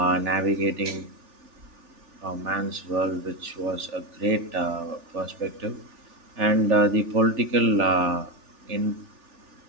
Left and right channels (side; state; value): left; late; 3.4 ms